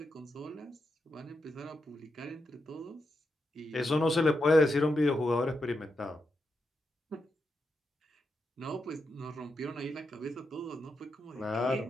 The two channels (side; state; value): both; normal; correlation 0.85